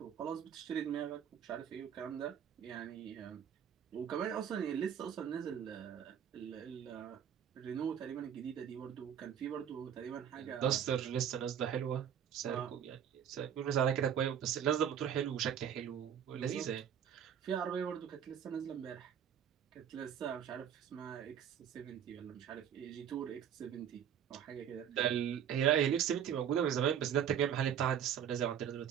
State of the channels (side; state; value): left; quieter; 9.0 dB